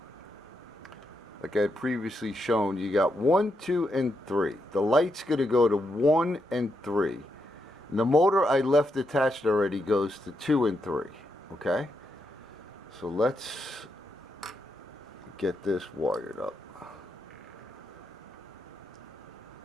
like I had previously shown, you got 1, 2, and 3. The light's going to go to 1 and 3. And the motor I left attached already goes to 2 and 3. Okay? So let's get this wired up.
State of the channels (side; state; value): both; normal; correlation 0.82